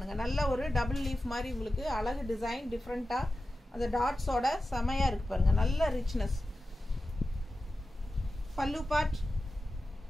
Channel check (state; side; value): normal; both; correlation 0.93